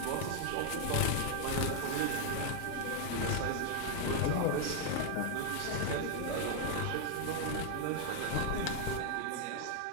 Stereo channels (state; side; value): different; both; correlation 0.00